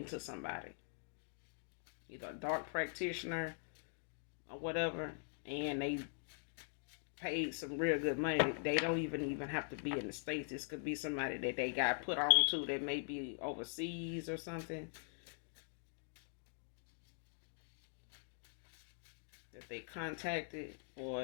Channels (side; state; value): right; silent; digital silence